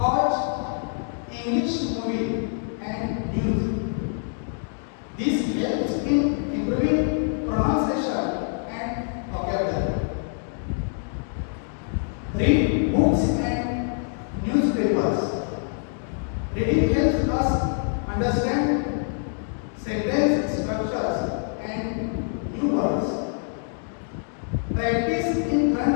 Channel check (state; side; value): silent; right; 60 dB below the other